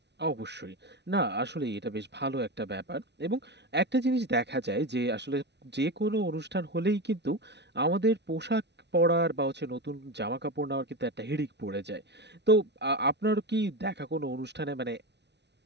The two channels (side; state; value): left; late; 0.50 ms